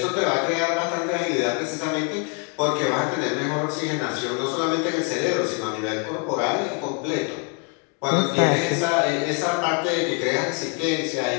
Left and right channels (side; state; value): right; quieter; 34.6 dB